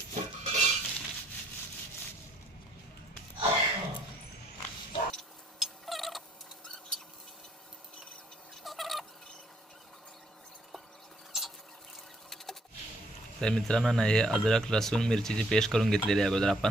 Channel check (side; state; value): both; normal; correlation 0.68